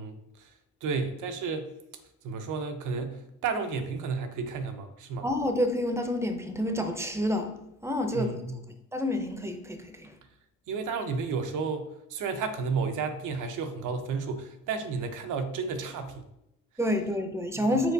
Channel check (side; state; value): both; normal; correlation 0.44